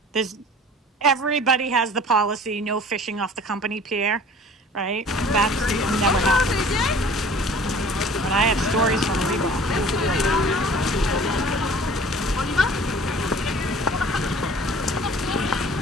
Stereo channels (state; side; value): normal; both; correlation 0.47